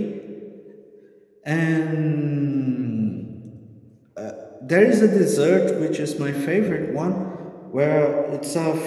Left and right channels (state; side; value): identical; both; correlation 1.00